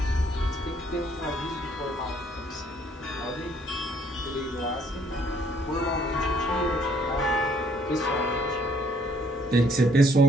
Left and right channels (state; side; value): normal; both; correlation 0.64